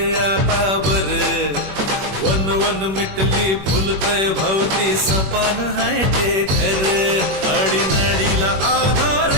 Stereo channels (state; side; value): late; left; 21 ms